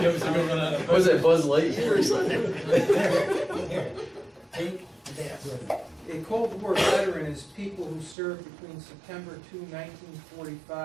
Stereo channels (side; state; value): left; drops out; at 8.2 s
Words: Was it Buzz Lightyear or something? Here, take that with you. A Cold War veteran is people who served between September 2,